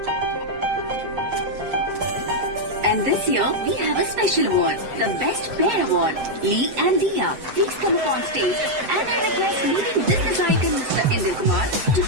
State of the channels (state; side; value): late; left; 7.8 ms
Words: And this year, we have a special award, the Best Pair Award. Lee and Dia, please come up on stage, and I request leading business icon Mr. Indra Kumar to